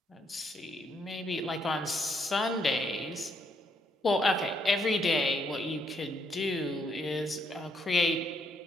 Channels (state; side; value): normal; both; correlation 0.74